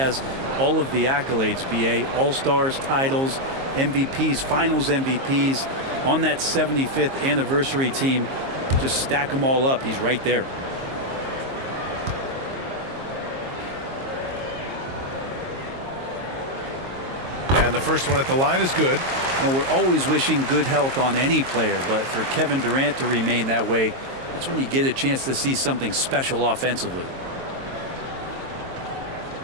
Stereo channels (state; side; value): late; left; 22 ms